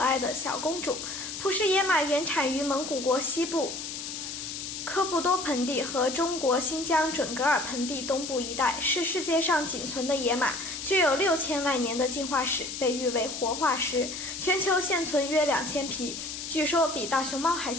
的小公主。普氏野马原产于蒙古国西部科布多盆地和中国新疆准噶尔盆地东部一带，是世界上仅存的野马，具有6000万年的进化史，被誉为活化石。全球现存约2000匹，据说比大熊猫还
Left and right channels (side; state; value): left; noise; hiss, 7 dB below the sound